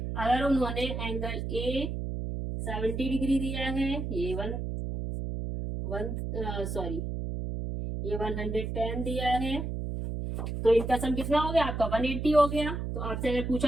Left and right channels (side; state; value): right; noise; hum, 4 dB below the sound